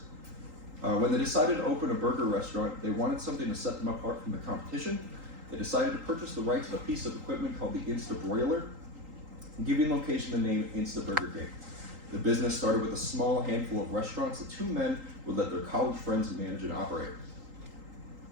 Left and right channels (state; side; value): late; left; 3.8 ms